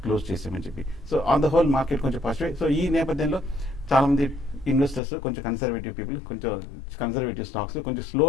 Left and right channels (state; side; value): drops out; right; at 5.0 s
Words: క్లోజ్ చేసామని చెప్పి. So on the whole market కొంచెం పాజిటివ్. సో ఈ నేపథ్యంలో చాలా మంది ఇన్వెస్టర్స్ కొంచెం కన్సర్వేటివ్ పీపుల్ కొంచెం కన్సర్వేటివ్ స్టాక్స్ కొంచెం స్లో